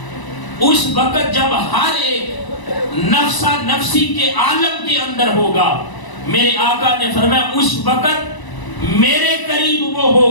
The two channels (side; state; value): right; late; 1.0 ms